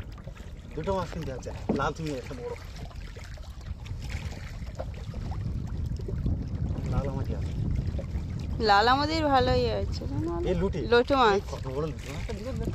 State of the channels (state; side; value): identical; both; correlation 1.00